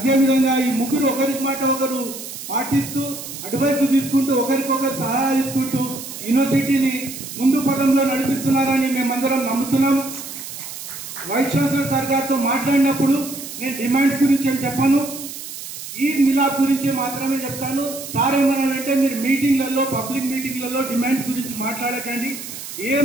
ఈ ముగ్గురు ఒకరి మాట ఒకరు పాటిస్తూ, అడ్వైస్ తీసుకుంటూ, ఒకరికొకరు సహాయం తీసుకుంటూ యూనివర్సిటీని ముందు పదంలో నడిపిస్తున్నారని మేమందరం నమ్ముతున్నాం. వైస్ ఛాన్సలర్ సార్ గారితో మాట్లాడినప్పుడు నేను డిమాండ్స్ గురించి ఏం చెప్పాను, ఈద్ మిలాద్ గురించి మాత్రమే చెప్తాను. సార్ ఏమన్నాడంటే మీరు మీటింగ్లలో, పబ్లిక్ మీటింగ్లలో డిమాండ్స్ గురించి మాట్లాడకండి,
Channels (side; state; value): right; noise; hiss, 10 dB below the sound